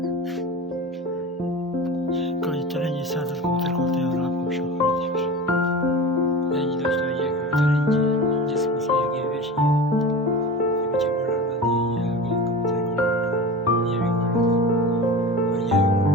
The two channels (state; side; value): normal; both; correlation 0.31